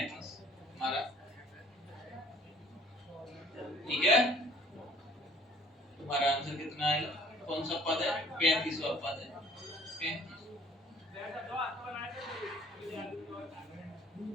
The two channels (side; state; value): both; normal; correlation 0.54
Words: हमारा, ठीक है। तुम्हारा आंसर कितना आएगा, कौन सा पद है 35वां पद है 35।